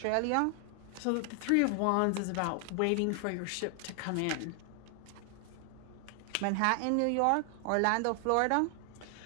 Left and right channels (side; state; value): both; different; correlation 0.00